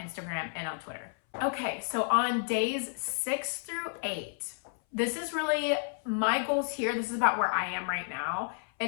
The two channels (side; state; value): right; silent; 57 dB below the other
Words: and on Twitter. Okay, so on days 6 through 8, this is really my goals here. This is about where I am right now.